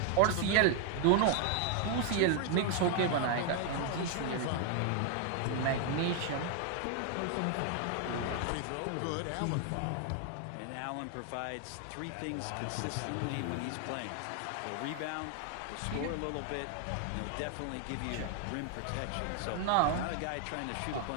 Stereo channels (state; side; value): different; both; correlation 0.00